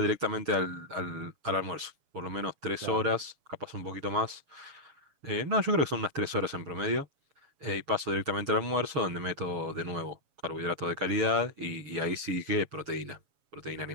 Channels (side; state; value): left; late; 7.2 ms